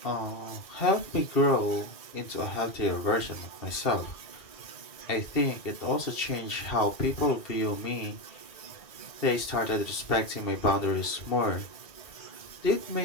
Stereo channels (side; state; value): right; late; 2.4 ms